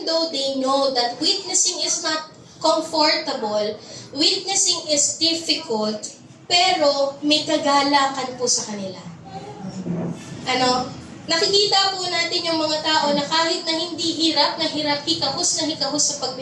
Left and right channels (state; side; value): identical; both; correlation 1.00